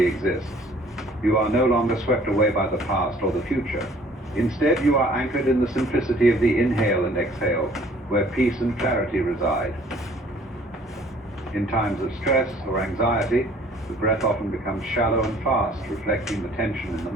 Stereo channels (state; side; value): normal; both; correlation 0.56